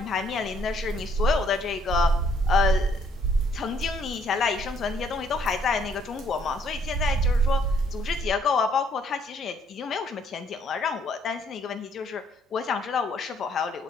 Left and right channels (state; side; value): normal; both; correlation 0.66